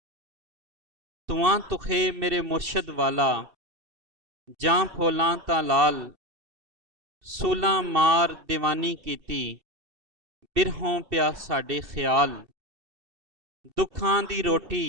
ਤੁਆਂ ਤੁਖੇ ਮੇਰੇ ਮੁਰਸ਼ਦ ਵਾਲਾ ਜਾਂ ਫੋਲਾਂ ਤਾਂ ਲਾਲ, ਸੂਲਾਂ ਮਾਰ ਦੀਵਾਨੀ ਕੀਤੀ ਬਿਰਹੋਂ ਪਿਆ ਸਾਡੇ ਖਿਆਲ, ਦੁੱਖਾਂ ਦੀ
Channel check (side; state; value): left; late; 2.7 ms